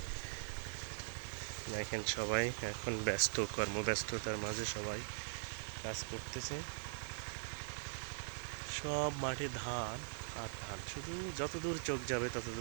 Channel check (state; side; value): silent; left; digital silence